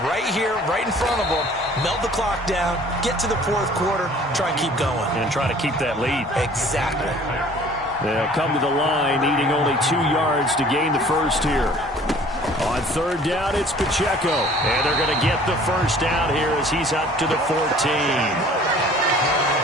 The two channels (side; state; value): both; normal; correlation 0.51